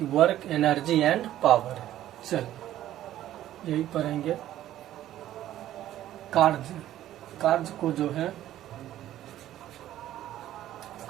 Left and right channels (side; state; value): left; quieter; 13.0 dB